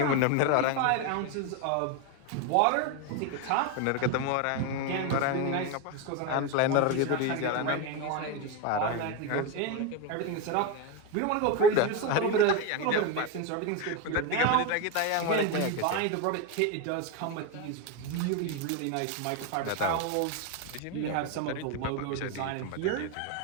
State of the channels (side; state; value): both; different; correlation 0.03